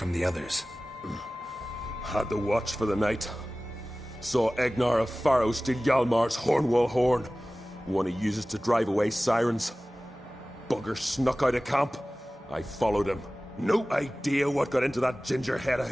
the others? Had the watch for the night. Saw Egnar of Faro steal Hjalmar's Hornwall horn. One he uses to drive away sirens. Bugger snuck out of camp. I followed him. No idea what got into that ginger head of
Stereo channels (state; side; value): normal; both; correlation 0.97